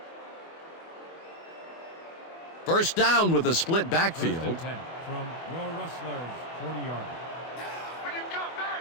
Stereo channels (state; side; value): late; right; 24 ms